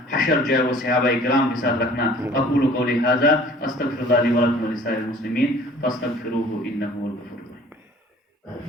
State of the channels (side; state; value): both; normal; correlation 0.50